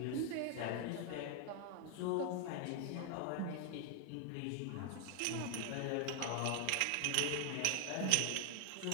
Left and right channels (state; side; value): different; both; correlation 0.00